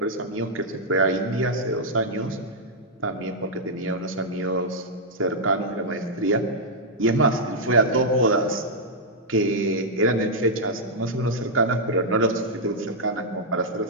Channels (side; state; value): both; normal; correlation -0.05